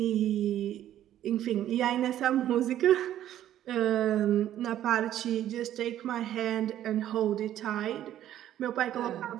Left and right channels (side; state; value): left; quieter; 11.9 dB